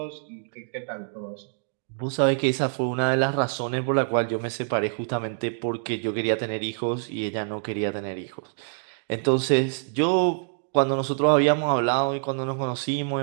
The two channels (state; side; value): silent; left; digital silence